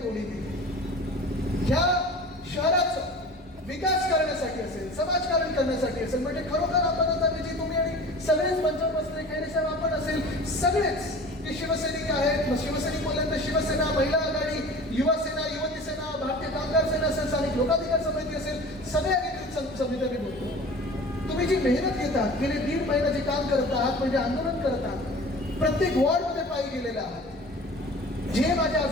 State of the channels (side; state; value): both; normal; correlation 0.40